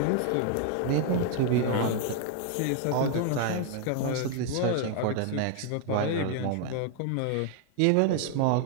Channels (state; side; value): different; both; correlation 0.00